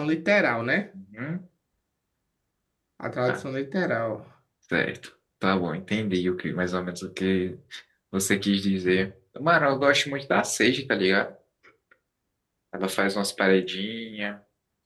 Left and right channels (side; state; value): both; identical; correlation 1.00